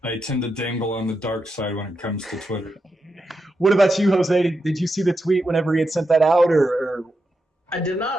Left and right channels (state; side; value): normal; both; correlation 0.86